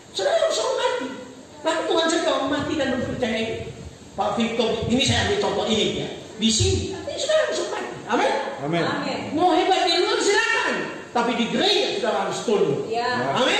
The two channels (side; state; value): both; identical; correlation 1.00